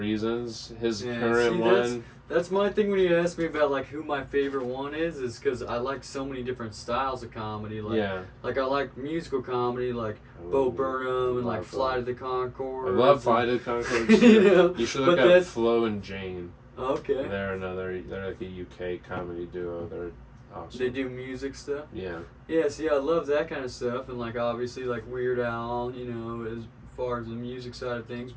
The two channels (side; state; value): both; identical; correlation 1.00